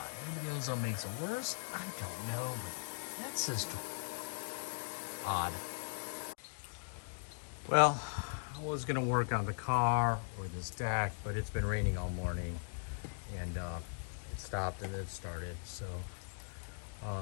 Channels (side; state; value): right; silent; digital silence